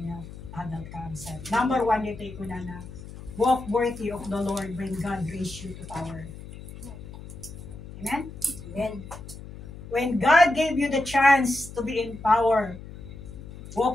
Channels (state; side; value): noise; left; hum, 14 dB below the sound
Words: nga adal kakabsat. Number 1 dito kunana, walk worthy of the Lord when God raised you to power. Amen? Amen. When God gave you the chance to be in power,